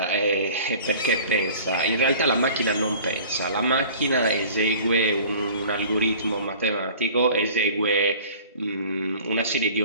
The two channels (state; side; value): inverted; both; correlation -0.45